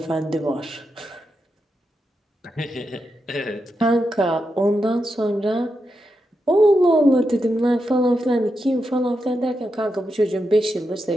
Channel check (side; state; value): both; normal; correlation 0.86